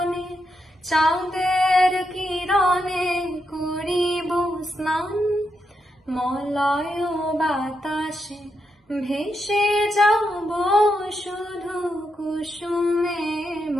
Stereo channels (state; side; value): normal; both; correlation 0.83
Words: চাঁদের কিরণে করিব স্নান। মলয় বাতাসে ভেসে যাব শুধু কুসুমে